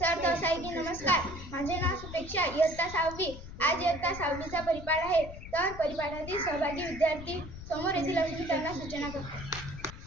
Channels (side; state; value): left; noise; rumble, 12 dB below the sound